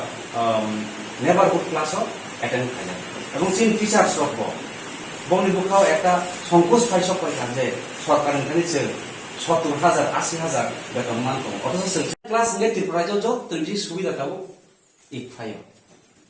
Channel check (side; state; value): both; identical; correlation 1.00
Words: नेबारहुड क्लास अटेंड खाया এবং চিন টিচার্স রব বংনি বুখাও একটা সংকোচ পাইছক পাইখান যে সরকারनिफ्राय जों 70,000 80,000 বেতন মানতো অথচ जों ক্লাস নে ত্রিপুরাজो যতই সুবিধা দাও